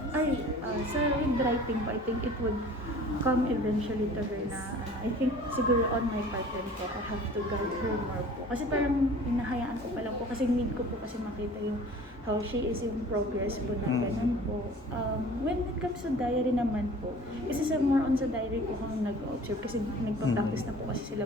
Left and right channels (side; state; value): both; normal; correlation 0.46